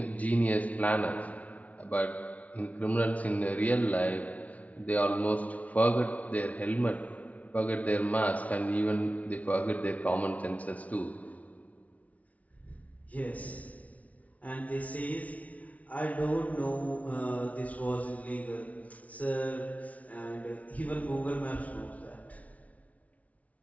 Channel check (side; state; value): right; late; 0.069 ms